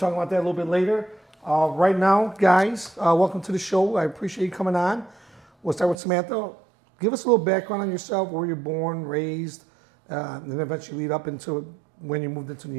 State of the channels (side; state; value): left; drops out; at 6.0 s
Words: about that a little bit later. Right now, guys, welcome to the show. I appreciate you coming on. We'll start with Samantha. Give us a little background on yourself, where you're born, raised, and then eventually lead up into when you moved into New